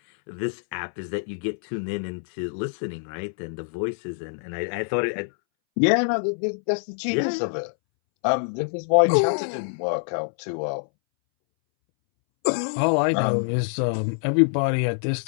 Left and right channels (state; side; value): silent; right; 62 dB below the other